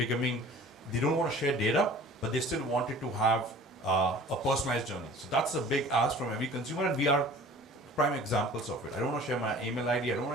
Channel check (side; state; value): both; normal; correlation 0.46